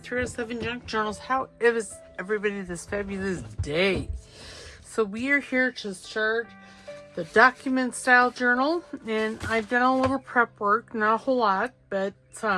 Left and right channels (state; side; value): identical; both; correlation 1.00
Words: 307 Junk Journals. How is everybody this fabulous day? So we are here to start the document style journal, and I've done a little prep work, not a whole lot, but